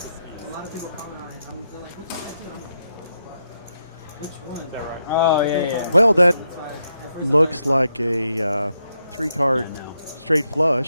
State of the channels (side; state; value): both; inverted; correlation -0.82